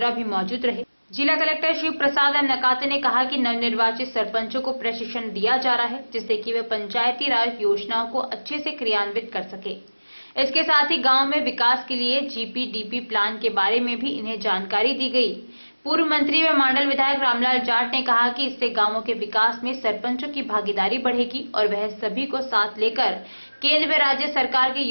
भी मौजूद रहे। जिला कलेक्टर शिव प्रसाद एम नकाते ने कहा कि नवनिर्वाचित सरपंचों को प्रशिक्षण दिया जा रहा है, जिससे कि वे पंचायती राज योजनाओं को अच्छे से क्रियान्वित कर सके। इसके साथ ही गांव में विकास के लिए जीपीडीपी प्लान के बारे में भी इन्हें जानकारी दी गई। पूर्व मंत्री व मांडल विधायक रामलाल जाट ने कहा कि इससे गांवों के विकास में सरपंचों की भागीदारी बढ़ेगी और वह सभी को साथ लेकर केंद्र व राज्य सरकार की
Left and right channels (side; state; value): both; inverted; correlation -1.00